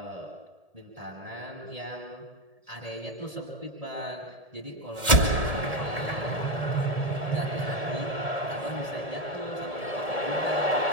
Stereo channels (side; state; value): left; late; 1.7 ms